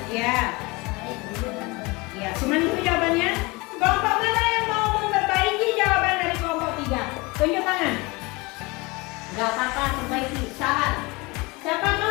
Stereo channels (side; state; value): right; quieter; 25.0 dB